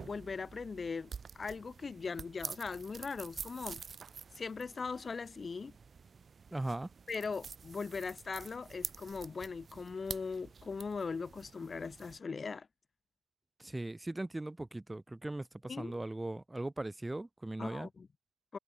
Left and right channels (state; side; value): normal; both; correlation 0.92